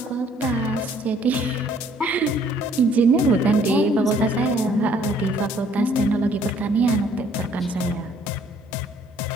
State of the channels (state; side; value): normal; both; correlation 0.61